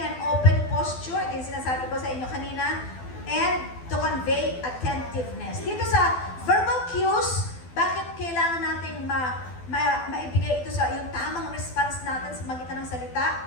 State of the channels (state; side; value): late; right; 12 ms